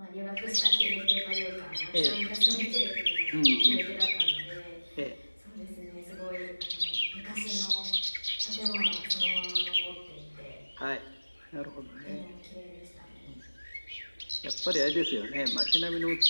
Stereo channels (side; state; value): both; inverted; correlation -1.00